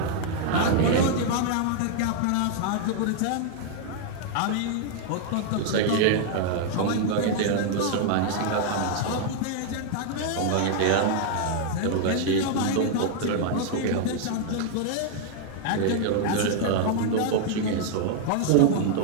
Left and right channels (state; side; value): different; both; correlation 0.00